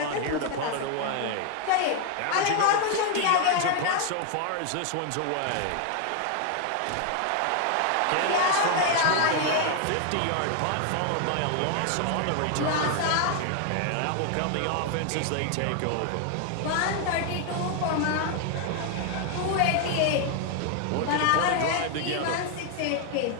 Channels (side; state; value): both; different; correlation 0.00